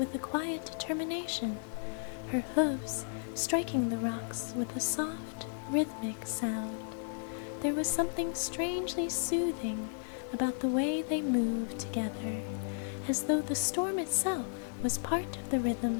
a quiet determination, her hooves striking the rocks with a soft, rhythmic sound. There was something strangely soothing about the way they moved together, as though the storm itself was part of the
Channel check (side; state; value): right; silent; 55 dB below the other